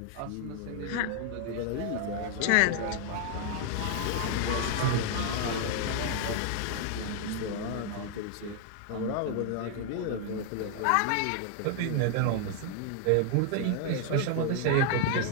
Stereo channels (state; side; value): different; both; correlation 0.00